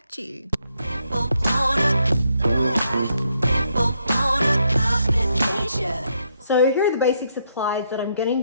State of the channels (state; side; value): inverted; both; correlation -0.76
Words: you. So here are the basic supplies that I'm